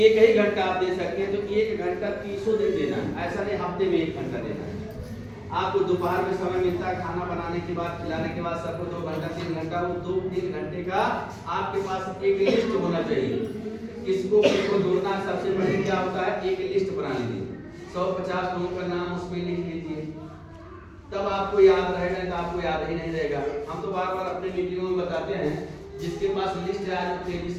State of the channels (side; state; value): both; identical; correlation 1.00